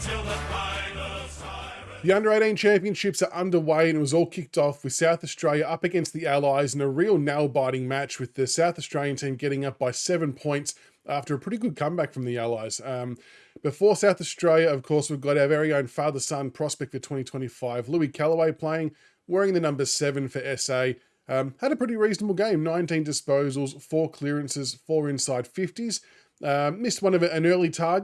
the final siren. The Under-18 Championships are underway and it was all kicked off with South Australia up against the Allies in a real nail-biting match, with the South Australian team getting up by 7 points after a pretty good comeback from the Allies. Before South Australia, of course, we've got our very own father-son prospect for 2025, Louis Kellaway, playing, wearing the number 7 for SA. Had a pretty reasonable game, 19 disposals, 4 clearances, 4 inside 50s. Missed one of an early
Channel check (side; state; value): both; identical; correlation 1.00